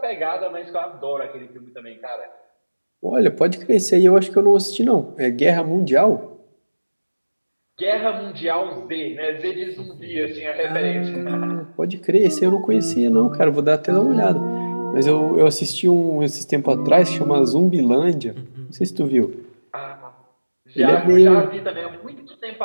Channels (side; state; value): both; inverted; correlation -1.00